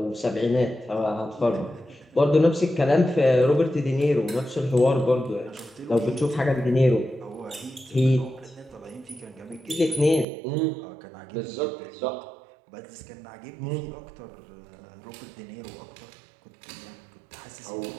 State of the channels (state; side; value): drops out; left; at 10.2 s